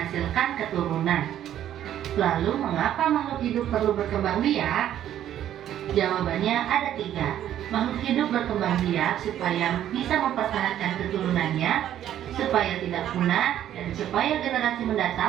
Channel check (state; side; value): quieter; left; 11.3 dB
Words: keturunan. Lalu, mengapa makhluk hidup perlu berkembang biak? Jawabannya ada 3. Makhluk hidup berkembang biak supaya bisa mempertahankan keturunannya, supaya tidak punah, dan supaya generasi